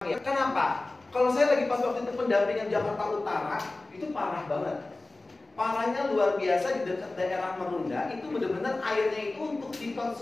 Kenapa? Kalau saya lagi pas waktu itu pendampingan Jakarta Utara, itu parah banget. Parahnya luar biasa di dekat daerah Merunda, itu benar-benar airnya itu untuk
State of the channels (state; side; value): quieter; right; 3.1 dB